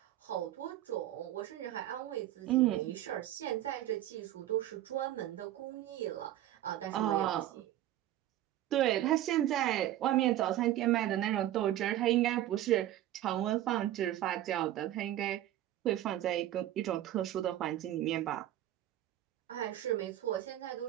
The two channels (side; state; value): left; quieter; 13.4 dB